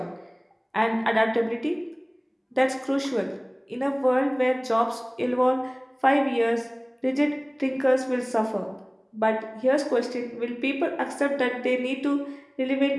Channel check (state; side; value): identical; both; correlation 1.00